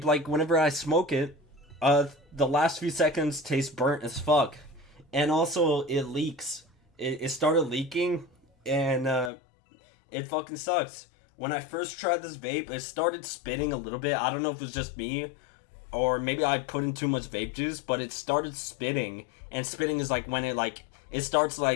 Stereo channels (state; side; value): drops out; right; at 9.3 s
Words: like, whenever I smoke it, the last few seconds taste burnt as fuck. And also, it leaks. It started leaking, and it fucking sucks. When I first tried this vape, it started spitting a little bit. I don't know if it was just me, or maybe I put in too much vape juice, but it started spitting. And spitting is like when it starts